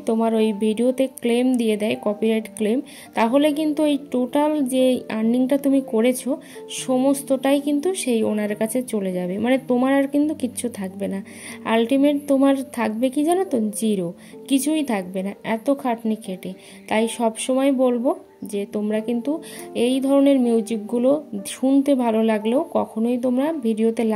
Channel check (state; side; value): identical; both; correlation 1.00